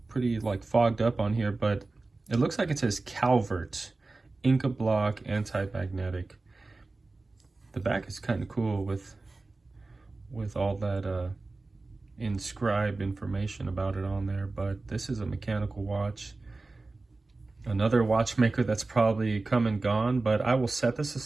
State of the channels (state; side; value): quieter; left; 3.4 dB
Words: like fogged up on here, but it looks like it says Calvert, Inca block, anti-magnetic. The back is kind of cool with all that inscribed information about it on there, but this is a mechanical watch. Another watchmaker that's probably come and gone, but I will set this